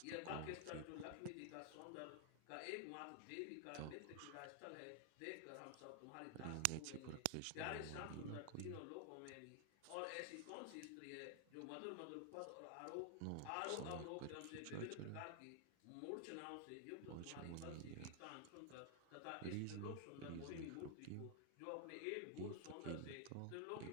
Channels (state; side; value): different; both; correlation 0.00